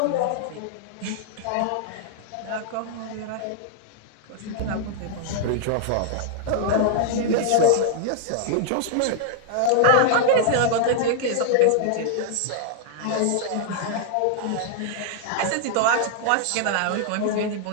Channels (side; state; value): both; different; correlation -0.01